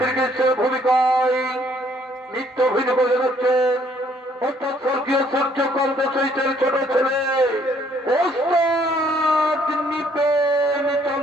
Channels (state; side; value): normal; both; correlation 0.64